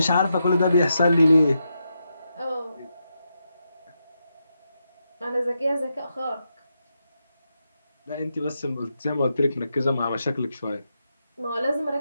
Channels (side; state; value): both; inverted; correlation -0.85